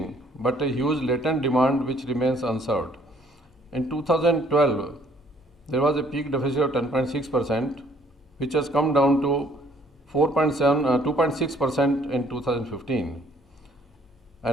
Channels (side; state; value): both; normal; correlation 0.62